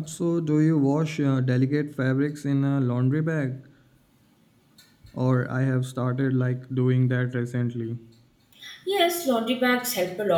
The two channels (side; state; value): both; identical; correlation 1.00